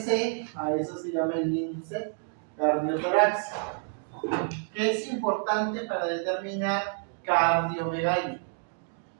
a eso se llama el índice cardiotorácico, que es importante para determinar cardiomegalia.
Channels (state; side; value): silent; left; 58 dB below the other